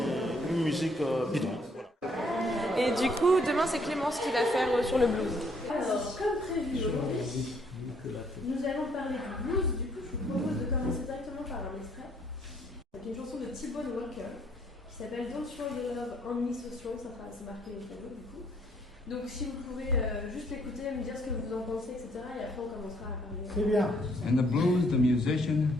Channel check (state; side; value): normal; both; correlation 0.66